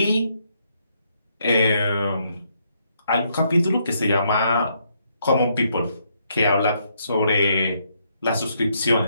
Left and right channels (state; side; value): inverted; both; correlation -0.74